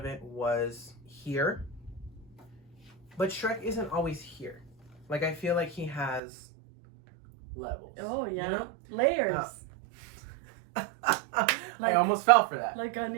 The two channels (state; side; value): drops out; left; at 6.2 s